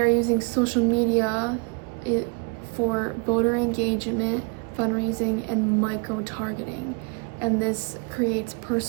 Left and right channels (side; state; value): left; quieter; 31.4 dB